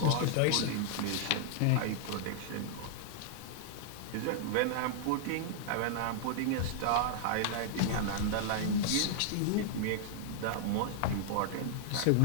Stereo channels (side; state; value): both; different; correlation -0.01